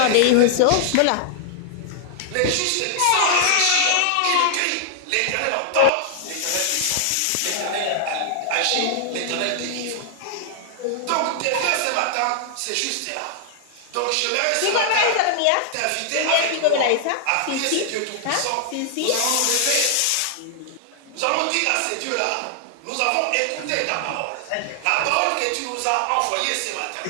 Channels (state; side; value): different; both; correlation -0.01